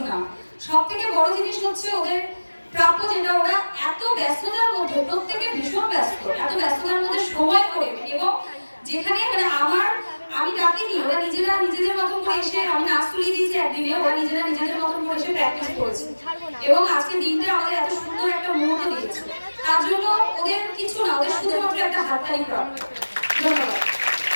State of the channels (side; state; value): both; inverted; correlation -1.00